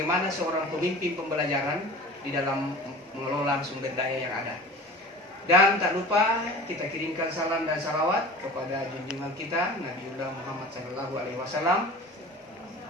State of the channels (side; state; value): both; normal; correlation 0.39